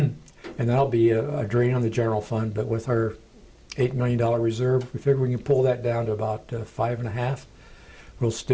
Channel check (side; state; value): both; identical; correlation 1.00